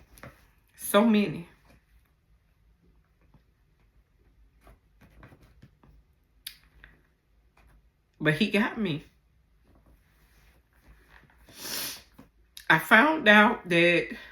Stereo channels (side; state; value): both; identical; correlation 1.00